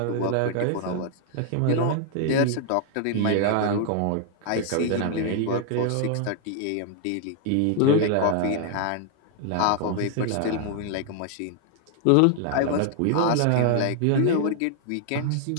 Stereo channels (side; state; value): both; different; correlation 0.00